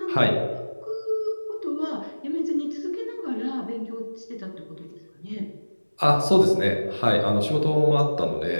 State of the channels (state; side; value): inverted; both; correlation -1.00